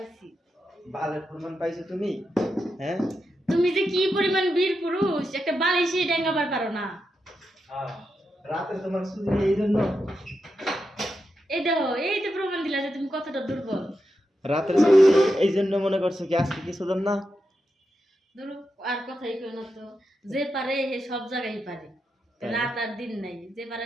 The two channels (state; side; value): normal; both; correlation 0.87